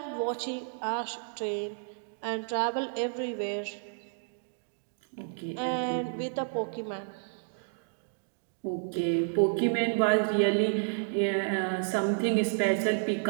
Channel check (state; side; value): silent; left; digital silence